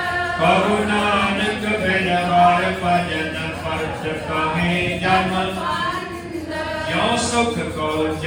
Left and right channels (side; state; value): both; identical; correlation 1.00